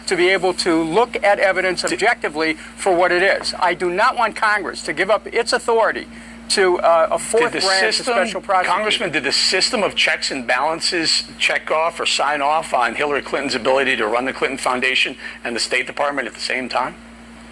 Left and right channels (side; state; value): both; identical; correlation 1.00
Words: to be able to look at evidence objectively for what it is. I do not want Congress to give up its authority to a fourth branch of special prosecutor. Congressman, did the system of checks and balances check off or sign off on Hillary Clinton's ability to run the Clinton Foundation and the State Department at the same time?